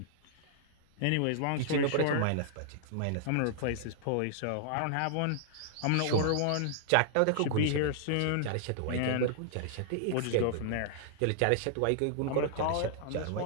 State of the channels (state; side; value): different; both; correlation -0.01